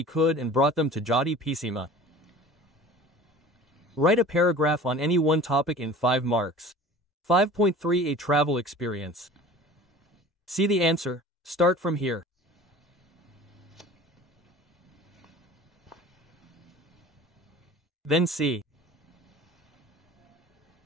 could and brought them to Judy Pisima. Write a paragraph on any one topic in 5 marks. 5.3 A travel experience. See the answer. Start from here. Then see.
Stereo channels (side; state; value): both; normal; correlation 0.43